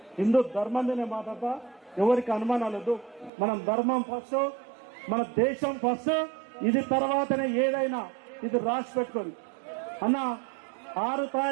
హిందూ ధర్మం మీద మాట్లాడతా. ఎవరికి అనుమానాలు వద్దు. మనం ధర్మం ఫస్ట్, మన దేశం ఫస్ట్, ఇది తర్వాతనే ఏదైనా. ఇది రాసి పెట్టుకోండి అన్న. 6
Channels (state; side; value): drops out; left; at 3.3 s